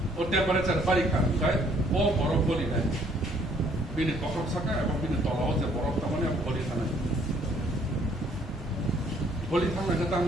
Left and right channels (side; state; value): both; normal; correlation 0.63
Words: ও টেম্পারেচার বাড়ি খায় ও বরফ গলি নাই বিনি পখর সাকা এবং বিনি তলাও যে বরফ তার গলি থানায় গলি থানায় তার